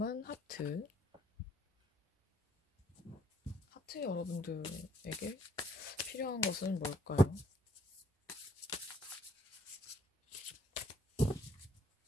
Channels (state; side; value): normal; both; correlation 0.65